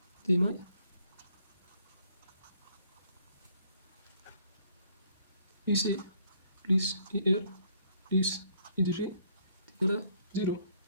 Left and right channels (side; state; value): both; inverted; correlation -0.65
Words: de May. Ici, plus IR, plus IDG est égal à 0.